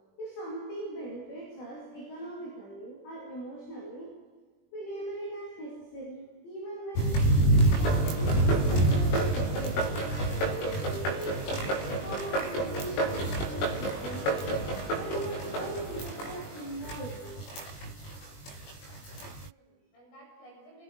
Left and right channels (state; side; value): late; right; 20 ms